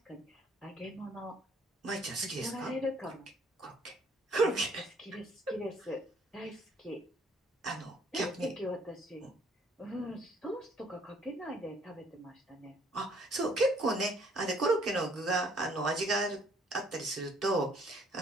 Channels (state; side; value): normal; both; correlation 0.62